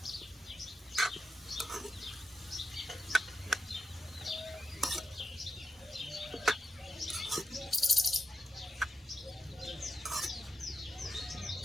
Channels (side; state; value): both; normal; correlation 0.87